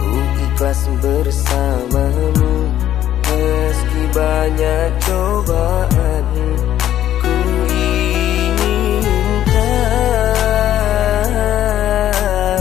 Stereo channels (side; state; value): right; quieter; 11.7 dB